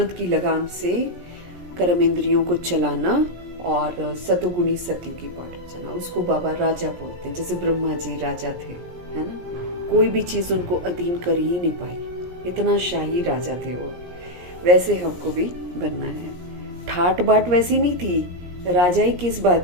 की लगाम से कर्म इंद्रियों को चलाना और सतोगुणी सत्य की बाट चलना, उसको बाबा राजा बोलते हैं। जैसे ब्रह्मा जी राजा थे, है ना, कोई भी चीज उनको अधीन कर ही नहीं पाई, इतना शाही राजा थे वो। वैसे हमको भी बनना है। ठाट बाट वैसी नहीं थी। राजाई किस बात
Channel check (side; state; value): left; late; 17 ms